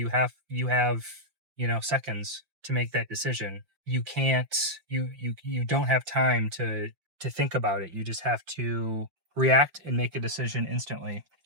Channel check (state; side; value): late; left; 5.6 ms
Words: have seconds to make that decision. You can't you don't have time to think about it. You just have to react and make a decision instantly.